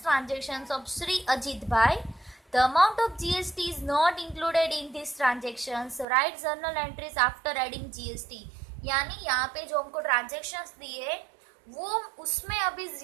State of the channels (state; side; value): drops out; left; at 6.1 s